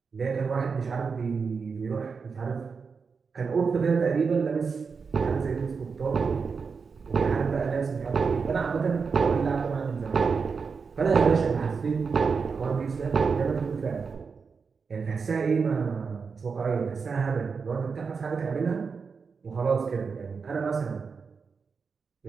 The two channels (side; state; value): left; quieter; 5.3 dB